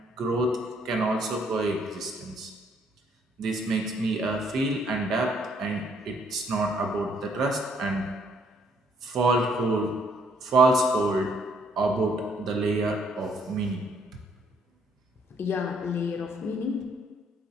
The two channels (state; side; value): normal; both; correlation 0.67